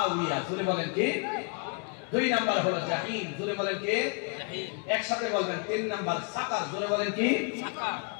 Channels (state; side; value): quieter; right; 35.9 dB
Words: জোরে বলেন কি? 2 নাম্বার হলো জাহিম। জোরে বলেন কি? জাহিম। একসাথে বলবেন। 3 নাম্বার সাকার। জোরে বলেন কি? সাকার।